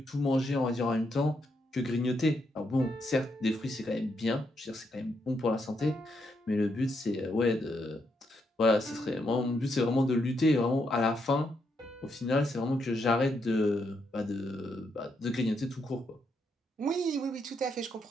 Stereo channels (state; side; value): normal; both; correlation 0.79